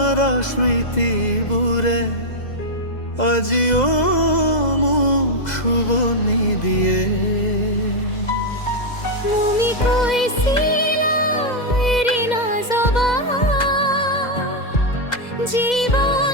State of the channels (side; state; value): right; late; 2.0 ms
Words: স্মৃতি বুড়ে আজিও মুখ শুভনি দিয়ে তুমি কইছিলা এরি না জবা